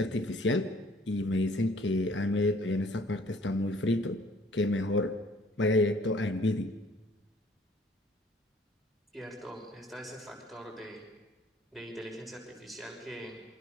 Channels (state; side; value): normal; both; correlation 0.57